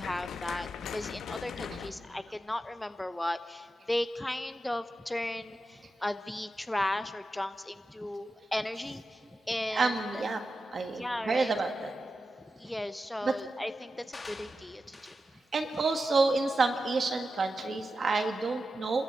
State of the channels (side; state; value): both; normal; correlation 0.91